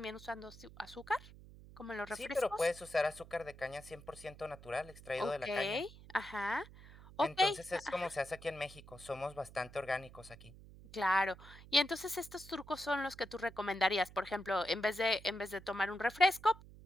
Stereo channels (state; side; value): noise; right; hum, 18 dB below the sound